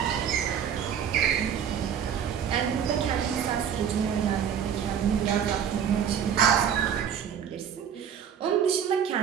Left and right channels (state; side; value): quieter; left; 8.3 dB